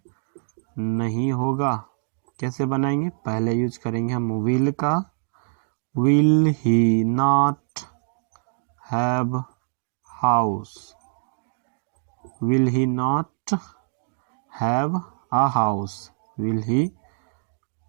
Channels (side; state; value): left; silent; digital silence